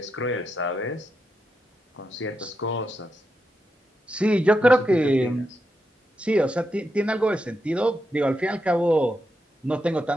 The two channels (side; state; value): both; normal; correlation 0.85